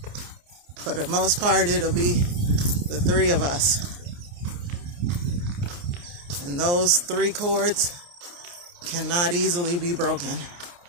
for the most part, it'll be the 3 of us. And those 3 cords cannot easily be broken.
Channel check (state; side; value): late; left; 29 ms